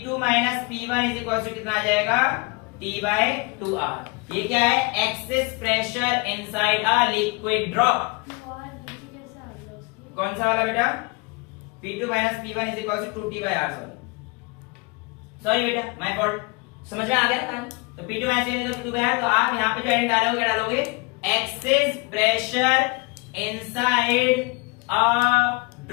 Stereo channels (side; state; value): right; quieter; 28.2 dB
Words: minus P1 is equal to कितना आ जाएगा? T by 2R। ये क्या है? Excess pressure inside a liquid drop. कौन सा वाला बेटा? P2 minus P1 is equal to 2T by R। Sorry बेटा, माय फॉल्ट। समझ में आ गया ना? तो P2 minus P2 bye R, तो आप यहाँ पे जो एंड डालोगे क्या डालोगे? Access pressure inside a